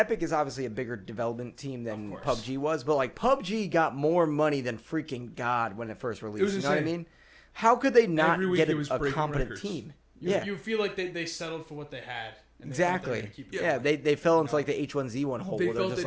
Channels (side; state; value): both; identical; correlation 1.00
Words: is obviously a bigger development team than Of course. PUBG was, but like PUBG got more money than freaking God when it first released. was You know what I insane. mean? How could they not Every week get it was a breaking competent records. team? You feel like they settled for what they had. And they thought they were Exactly. gonna keep it Yeah, going. they fell into like the H1Z1 hole They where they're felt just